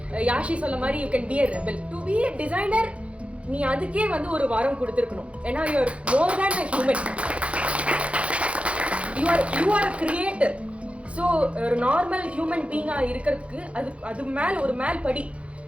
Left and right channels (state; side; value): late; left; 0.062 ms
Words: யாஷி சொல்ல மாதிரி you can be a rebel. To be a designer நீ அதுக்கே ஒரு வாரம் கொடுத்துருக்கணும். ஏன்னா you are more than a human. You are creator. So ஒரு நார்மல் ஹியூமன் பீயிங்காக இருக்கிறதுக்கு அது ஒரு மேல் படி.